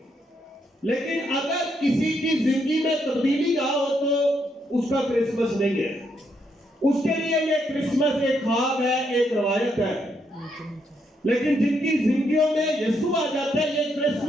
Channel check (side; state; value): both; normal; correlation 0.77